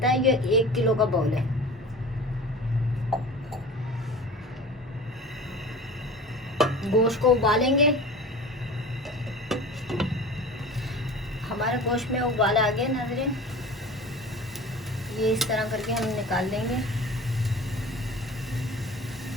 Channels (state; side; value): normal; both; correlation 0.37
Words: है। ये 1 किलो का बॉल है। गोश्त को उबालेंगे। हमारे गोश्त में उबाल आ गए नाज़रीन। ये इस तरह करके हम निकाल लेंगे।